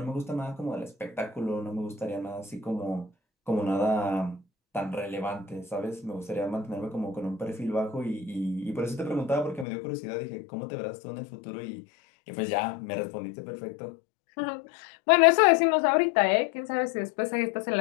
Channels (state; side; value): drops out; right; at 9.7 s